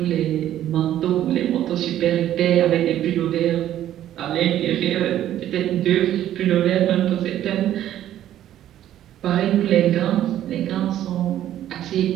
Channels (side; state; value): left; quieter; 12.0 dB